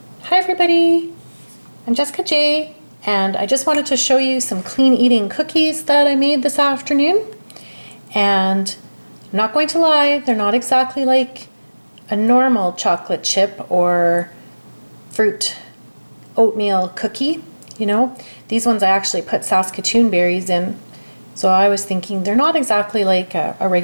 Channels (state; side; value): inverted; both; correlation -1.00